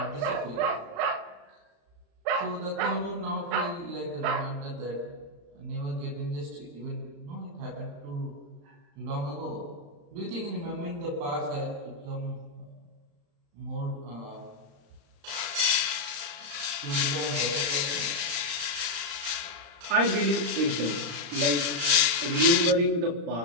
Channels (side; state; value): left; late; 35 ms